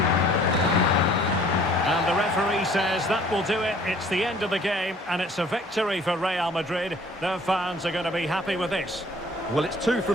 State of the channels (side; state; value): both; normal; correlation 0.54